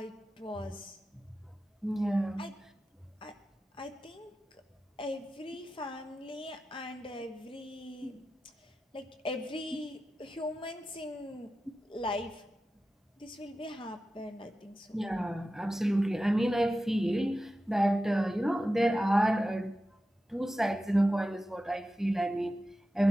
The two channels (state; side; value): normal; both; correlation 0.93